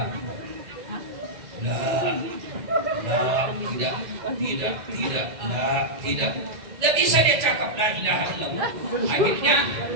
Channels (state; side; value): late; left; 2.0 ms